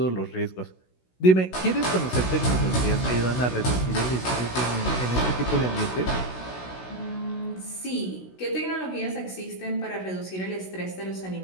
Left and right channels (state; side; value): late; right; 16 ms